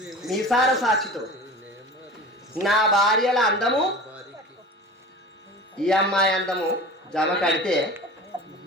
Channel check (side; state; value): both; normal; correlation 0.36